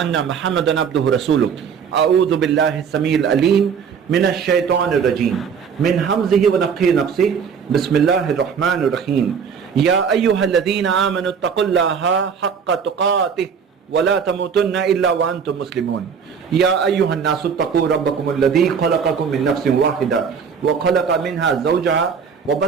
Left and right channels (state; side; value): quieter; left; 6.6 dB